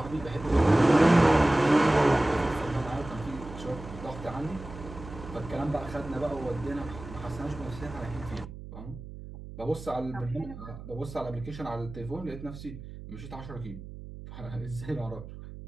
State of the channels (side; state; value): right; noise; hum, 13 dB below the sound